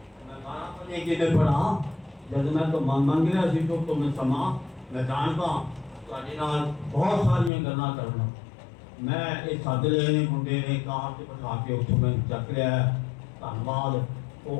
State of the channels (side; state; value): right; drops out; at 7.5 s